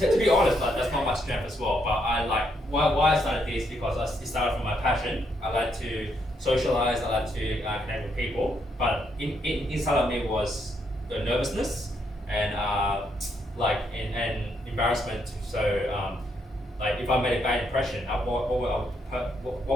to be honest, that's not my strength as well. But why I started this, because it started from my passion. I like to socialize, I like to connect with people, but inside of me was the nervousness and embarrassment. So if I made a bad impression, what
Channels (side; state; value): both; normal; correlation 0.76